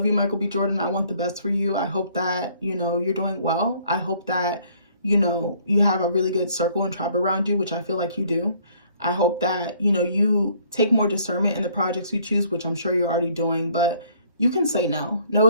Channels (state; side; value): inverted; both; correlation -0.61